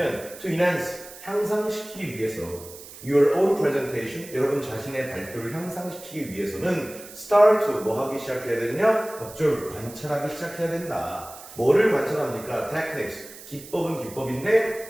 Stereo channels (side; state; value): right; noise; hiss, 16 dB below the sound